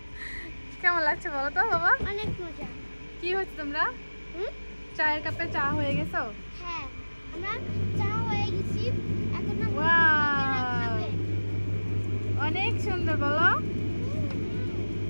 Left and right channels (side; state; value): both; inverted; correlation -1.00